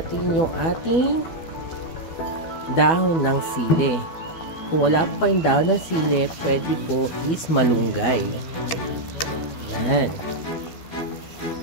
yung ating dahon ng sili. Kung wala po kayong dahon ng sili, pwede po is malunggay. Ayan.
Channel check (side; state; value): right; late; 12 ms